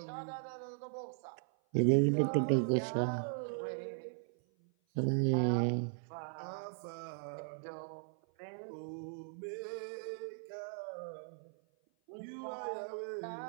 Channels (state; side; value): silent; left; 52 dB below the other